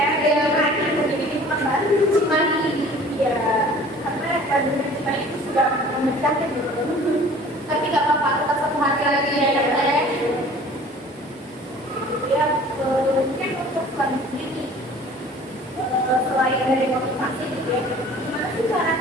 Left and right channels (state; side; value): normal; both; correlation 0.48